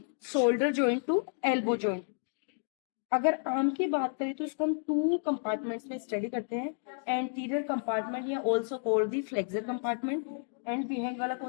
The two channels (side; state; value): right; silent; digital silence